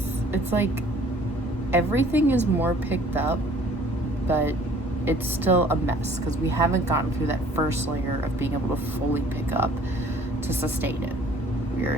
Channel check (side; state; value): both; normal; correlation 0.54